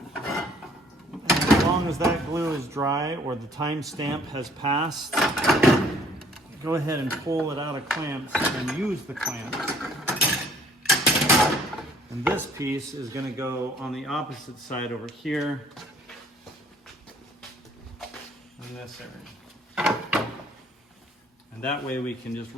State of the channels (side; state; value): both; normal; correlation 0.59